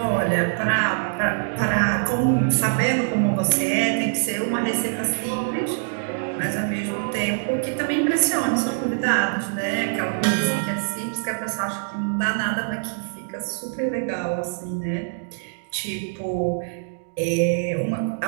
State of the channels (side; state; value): left; silent; digital silence